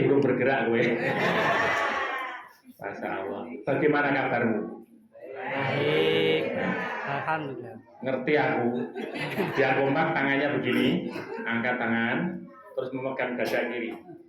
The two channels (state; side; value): identical; both; correlation 1.00